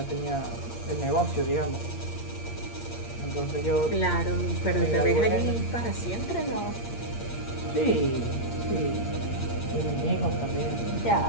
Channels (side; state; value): right; late; 8.6 ms